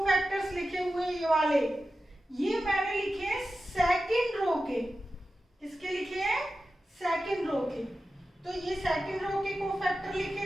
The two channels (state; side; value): normal; both; correlation 0.93